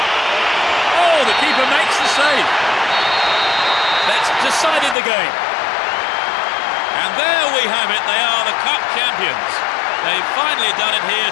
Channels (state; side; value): drops out; right; at 5.0 s